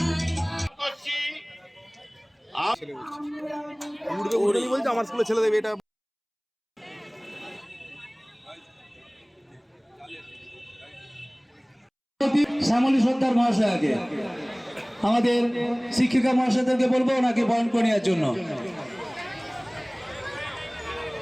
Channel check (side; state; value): both; identical; correlation 1.00